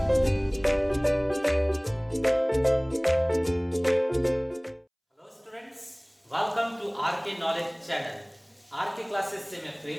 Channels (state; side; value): identical; both; correlation 1.00